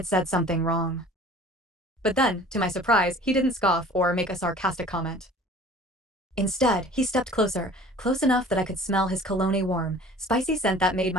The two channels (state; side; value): normal; both; correlation 0.46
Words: said something wrong. But then, to my surprise, he didn't scoff or make a sarcastic comment. Instead, he stepped closer, close enough that I could smell his cologne warm, spicy scent that made